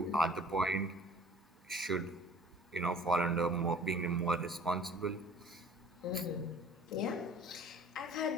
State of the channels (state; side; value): normal; both; correlation 0.50